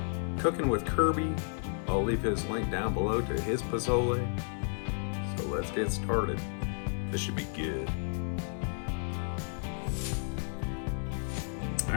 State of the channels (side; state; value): right; silent; 56 dB below the other